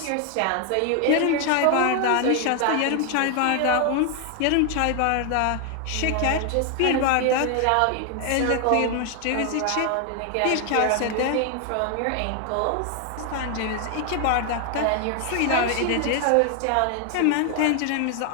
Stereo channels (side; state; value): both; different; correlation 0.01